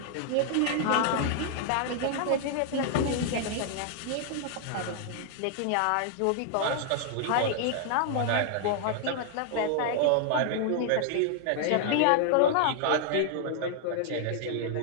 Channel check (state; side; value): different; both; correlation 0.00